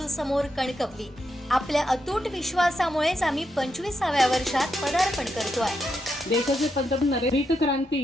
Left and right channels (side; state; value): both; normal; correlation 0.83